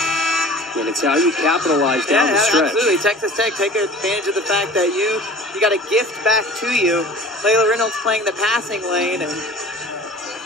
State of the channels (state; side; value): normal; both; correlation 0.43